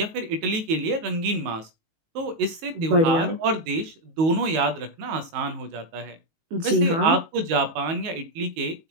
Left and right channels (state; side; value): late; left; 19 ms